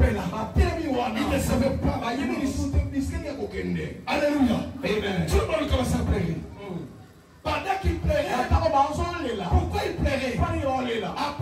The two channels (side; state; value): both; identical; correlation 1.00